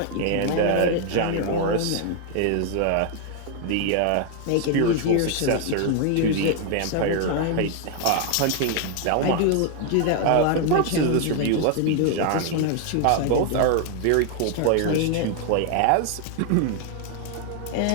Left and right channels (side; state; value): both; different; correlation 0.00